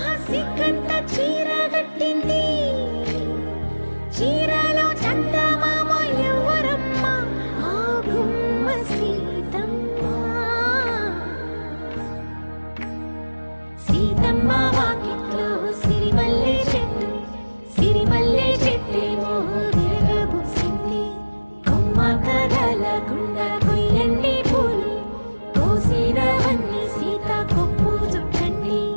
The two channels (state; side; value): inverted; both; correlation -1.00